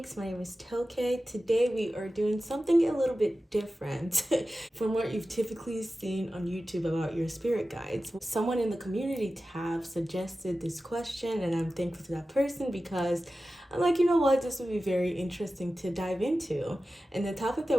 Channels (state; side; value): normal; both; correlation 0.94